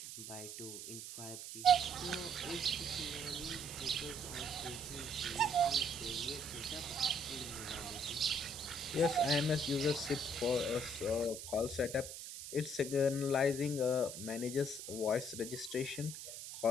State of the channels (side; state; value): right; noise; hiss, 9 dB below the sound